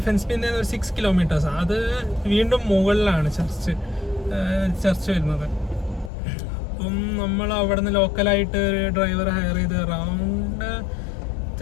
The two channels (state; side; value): drops out; right; at 6.1 s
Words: ഒരു 6 kilometers. അത് വീണ്ടും മുകളിലാണ് ചർച്ച് വരുന്നത്. അപ്പം നമ്മൾ അവിടെ നിന്ന് ലോക്കലായിട്ട് ഒരു ഡ്രൈവർ ഹയർ ചെയ്ത് അറൗണ്ട്